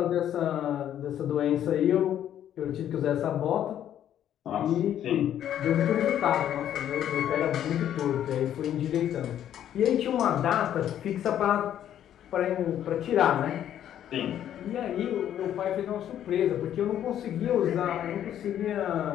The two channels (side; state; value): right; quieter; 10.7 dB